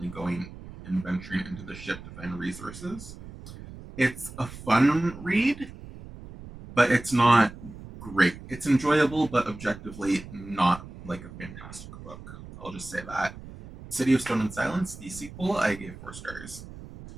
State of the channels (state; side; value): noise; right; rumble, 15 dB below the sound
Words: going and venturing into the ship to find resources. It's a fun read, but it's not great. It's enjoyable, but objectively not like a fantastic book. I'll just say that. City of Stone and Silence, the sequel, I gave 4 stars.